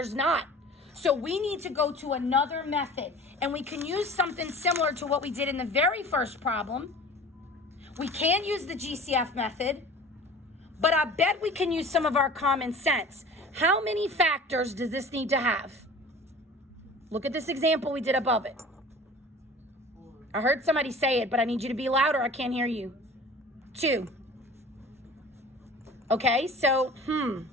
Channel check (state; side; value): normal; both; correlation 0.42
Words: not. So we need to go to another method. And we can use something similar to what we did in the very first problem. We can use the GCF method, but I bet we can use some of our common sense. How many factors does this need to have? Look at this example we did above it. I heard somebody say it, but I need you to be louder. I can't hear you. 2. Okay, so,